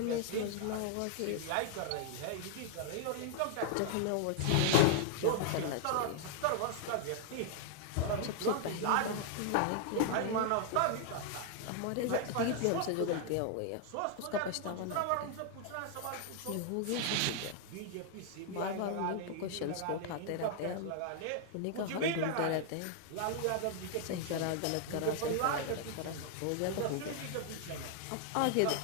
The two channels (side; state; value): both; different; correlation -0.01